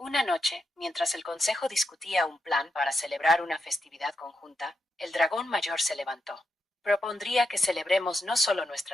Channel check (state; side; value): normal; both; correlation 0.85